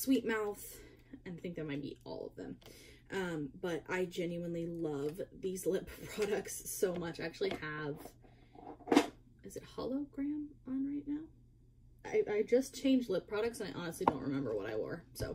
Mouth, and I think that might be all of them. But I genuinely love these lip products so much. I actually have is it hologram on right now? I just changed lip products and I honestly don't remember what I wore.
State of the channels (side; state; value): both; identical; correlation 1.00